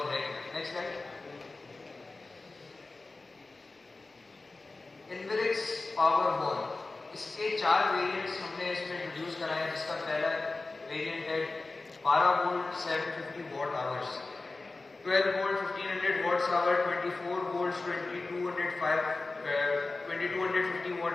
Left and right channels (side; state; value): right; quieter; 3.5 dB